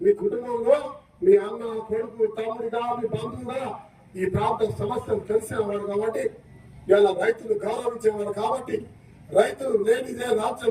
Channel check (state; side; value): identical; both; correlation 1.00